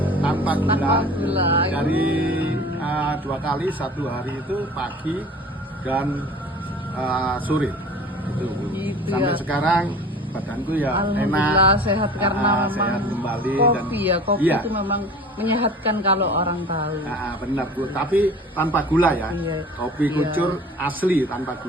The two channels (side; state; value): both; normal; correlation 0.42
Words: tanpa gula. Dari 2 kali, 1 hari itu pagi dan sore itu. Sampai ya. Sekarang badanku ya Alhamdulillah enak, sehat karena memang sehat kembali. kopi Dan kopi iya, itu memang menyehatkan kalau orang tahu. benar Bu, tapi tanpa gula ya. Iya. Kopi kucur asli tanpa